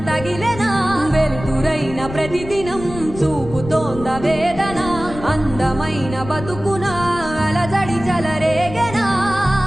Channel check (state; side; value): noise; left; rumble, 12 dB below the sound